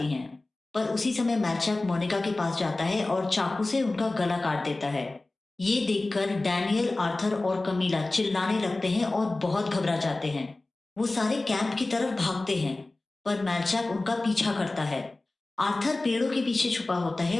हैं। पर उसी समय मैलचैक मोनिका के पास जाता है और चाकू से उनका गला काट देता है। ये देखकर डैनियल, आर्थर और कमीला चिल्लाने लगते हैं और बहुत घबरा जाते हैं। वो सारे कैंप की तरफ भागते हैं, पर मैलचैक उनका पीछा करता है। आर्थर पेड़ों के पीछे छुपा होता है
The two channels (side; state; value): right; quieter; 3.0 dB